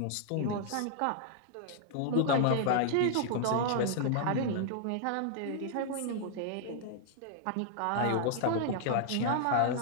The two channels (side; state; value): both; different; correlation 0.00